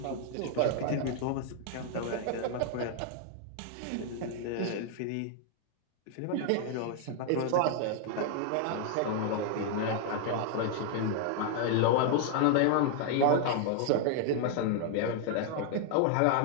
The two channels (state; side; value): different; both; correlation 0.00